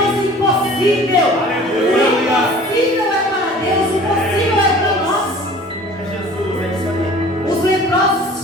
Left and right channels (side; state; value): both; normal; correlation 0.46